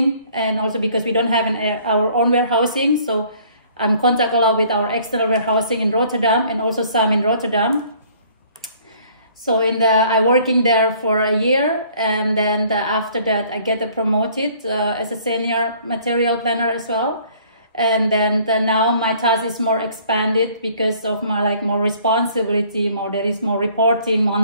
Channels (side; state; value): both; inverted; correlation -0.58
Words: and also because we don't have our own warehousing, so I'm contact a lot with our external warehousing in Rotterdam and also some in Rotterdam. So I working there for a year, and then after that I get promoted as a senior material planner as well. And then now my task is more expanded because of my more responsibility, there is more reporting